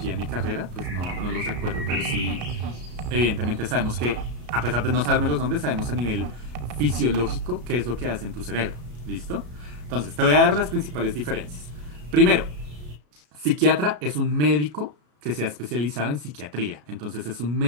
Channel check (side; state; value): left; late; 33 ms